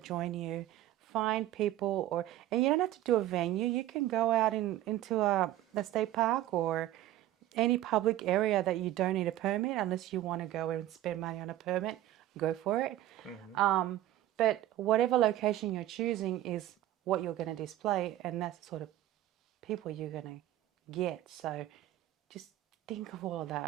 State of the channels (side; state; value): left; quieter; 14.1 dB